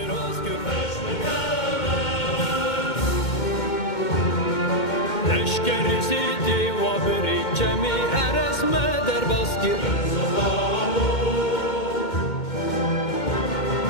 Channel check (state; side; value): late; right; 2.2 ms